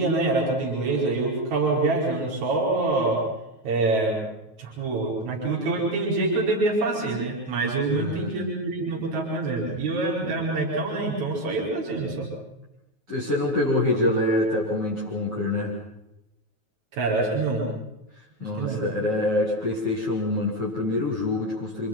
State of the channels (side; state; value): left; late; 9.3 ms